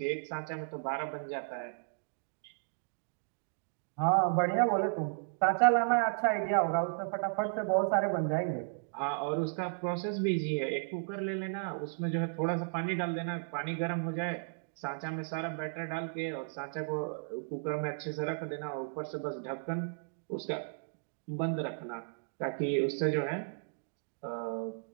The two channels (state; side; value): silent; left; digital silence